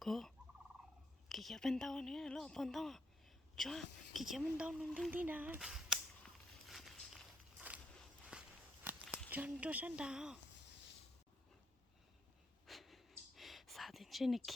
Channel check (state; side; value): normal; both; correlation 0.78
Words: cô kìa bên tao nữa lo bên tao cho kìa bên tao nung tinh tí nào cho sẵn tao sao thế trên này